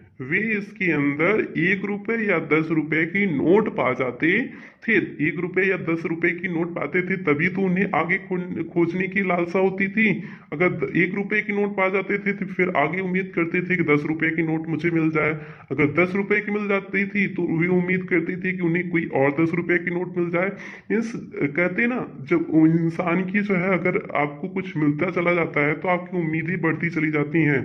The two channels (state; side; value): identical; both; correlation 1.00